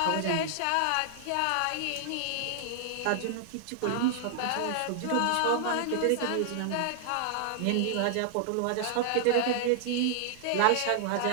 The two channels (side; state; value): both; different; correlation 0.00